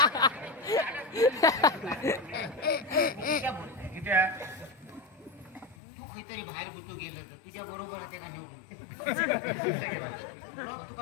तू काहीतरी बाहेर गुतो गेलं तर तुझ्या बरोबर त्याला नेऊ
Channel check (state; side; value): drops out; right; at 5.8 s